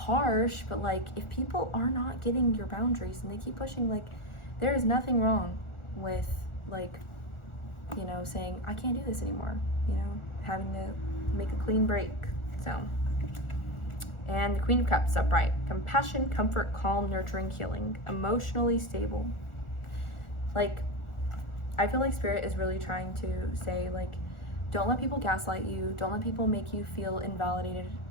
but like if people are not getting your boundaries and they keep pushing, like there is nothing wrong with like, you know, saying I can't do this anymore, you know, having to make a clean break. So, and the Queen of Cups upright: compassion, comfort, calm, nurturing, healing, emotionally stable. Like, I feel like Spirit is really trying to say like, don't let people gaslight you, don't let people make you feel invalidated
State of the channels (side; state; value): right; late; 1.4 ms